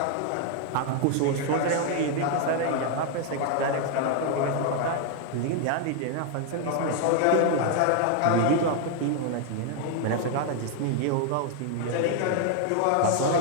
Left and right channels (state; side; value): different; both; correlation 0.00